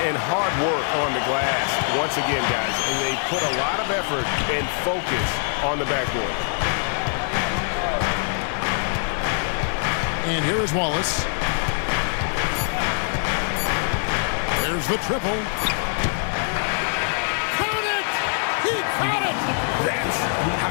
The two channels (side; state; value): right; silent; 59 dB below the other